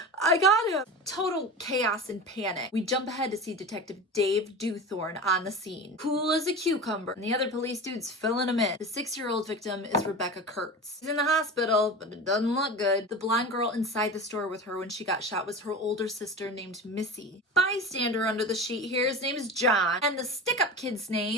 I got him! Total chaos and panic. We jump ahead to see Detective Dave Dewthorne on the scene. Cool as a cucumber, and the other police dude's filling him in. The 6-year-old victim is Rebecca Kurtz. She's in the hospital, but it doesn't look good. The blonde girl inside the store with her when she got shot was her older sister named Missy. Bystander under the sheet here, his name is John, and the stick-up kid's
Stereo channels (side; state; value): both; normal; correlation 0.30